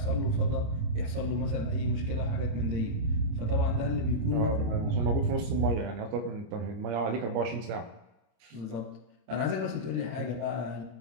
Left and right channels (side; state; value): left; late; 27 ms